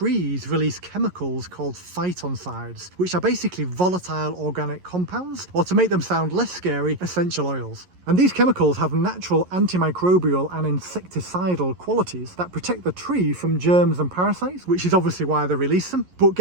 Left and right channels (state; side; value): late; left; 11 ms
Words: release chemicals called phytoncides, which are basically volatile organic compounds, or to make them sound less scary, essential oils. And these chemicals have natural antimicrobial and insecticidal qualities that protect the tree from germs and parasites, which is obviously why they release them. But